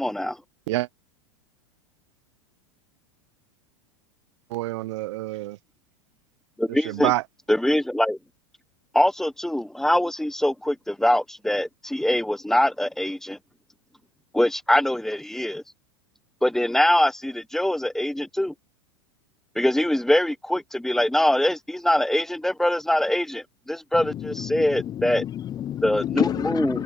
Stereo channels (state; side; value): normal; both; correlation 0.93